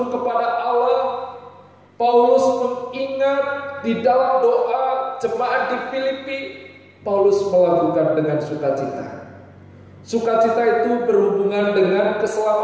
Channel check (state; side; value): identical; both; correlation 1.00